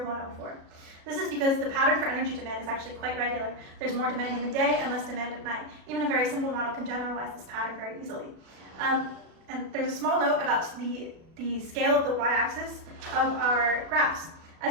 This is because the pattern for energy demand is actually quite regular. There's more demand in the day and less demand at night. Even a very simple model can generalize this pattern very easily. And there's a small note about the scale of the y-axis of our graphs.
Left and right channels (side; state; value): left; late; 37 ms